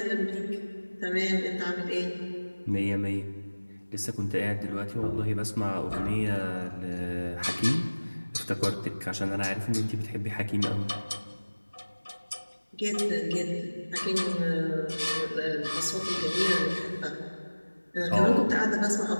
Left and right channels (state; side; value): inverted; both; correlation -1.00